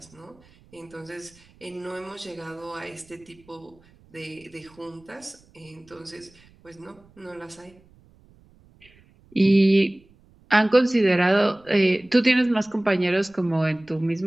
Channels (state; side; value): noise; right; rumble, 29 dB below the sound